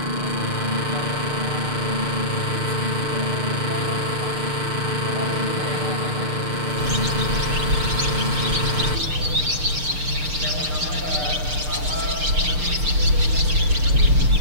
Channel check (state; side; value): late; left; 6.6 ms